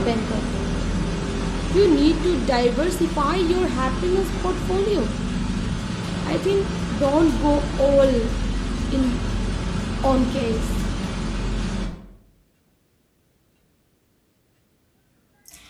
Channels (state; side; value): identical; both; correlation 1.00